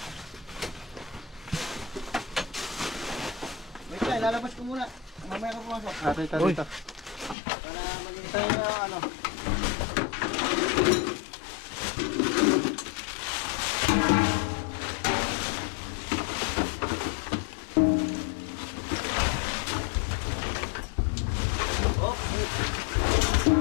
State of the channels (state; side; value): drops out; right; at 7.4 s